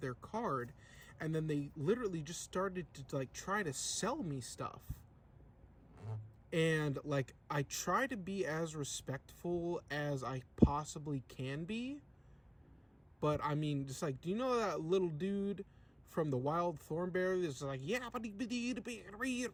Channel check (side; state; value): both; identical; correlation 1.00